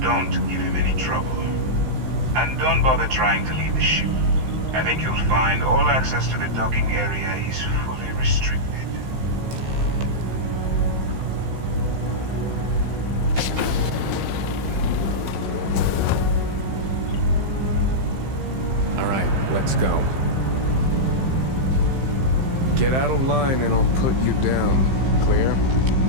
give him any trouble. And don't bother trying to leave the ship. I think you'll find all access to the docking area is fully restricted. All right, let's go. Get out of line and I'll put you down. Clear?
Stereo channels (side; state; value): left; late; 15 ms